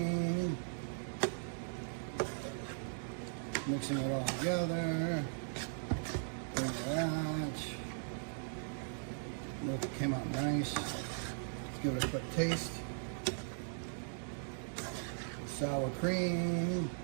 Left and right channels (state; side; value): silent; left; digital silence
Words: Mixing it all together. Bring it out. Look, it came out nice. Let's give it a quick taste. Sour cream.